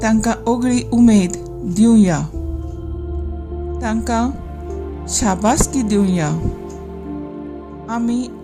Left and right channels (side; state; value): both; identical; correlation 1.00